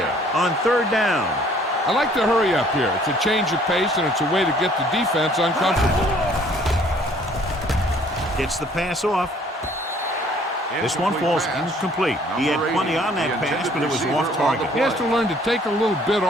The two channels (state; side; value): normal; both; correlation 0.58